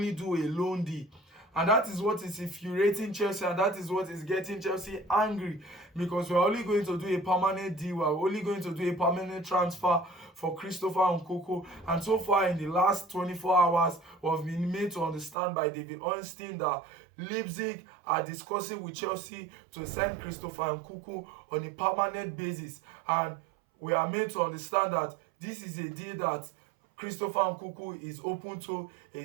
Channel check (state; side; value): drops out; left; at 15.4 s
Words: do a loan deal. And that is what is infuriating Chelsea, and that is what is getting Chelsea angry, because we're only going to do a permanent deal, we're only going to do a permanent transfer for Christopher Nkunku. And so far in the last 24 hours, we've been made to understand by David Ornstein that Leipzig are discussing with Chelsea to sign Christopher Nkunku on a permanent basis. And we are made to understand that this is a deal that Christopher Nkunku is open to.